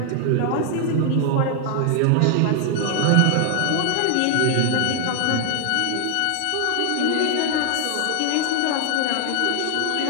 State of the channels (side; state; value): both; different; correlation 0.00